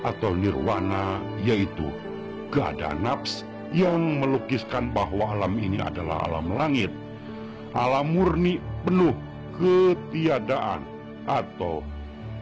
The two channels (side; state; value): both; identical; correlation 1.00